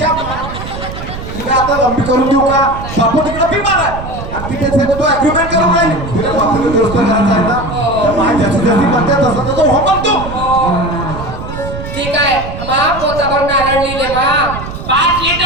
त्या तिला आता लंबी करून देऊ का. बापू तिकडे बिमार आहे. आणि तिथे सगळं तो अग्रीमेंट करून राहिली. तिला बापूला दुरुस्त करायचं आहे ना. तर माय जशी जशी म्हणते तसं तसं हो म्हणतो. ठीक आहे मा पोताभर नारळ लिहिले मा. 5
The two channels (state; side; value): noise; right; rumble, 9 dB below the sound